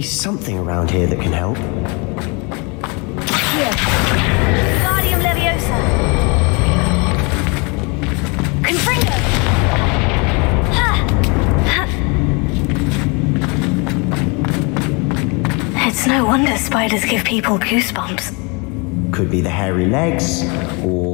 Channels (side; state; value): right; quieter; 30.4 dB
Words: something around here that can help. Here. Guardium Leviosa. Confringo! It's no wonder spiders give people goosebumps. Could be the hairy legs,